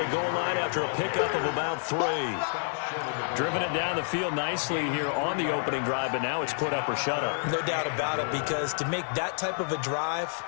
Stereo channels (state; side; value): silent; right; digital silence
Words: goal line after a pickup of about 3. Driven it down the field nicely here on the opening drive, but now it's put up or shut up. No doubt about it, because to make that type of a drive